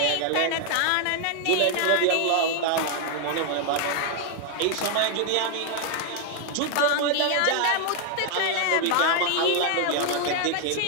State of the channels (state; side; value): different; both; correlation 0.00